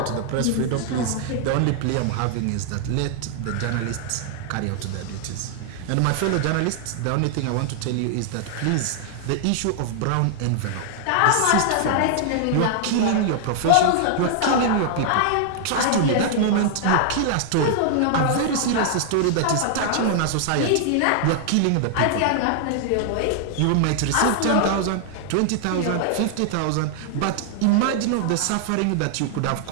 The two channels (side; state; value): both; different; correlation 0.00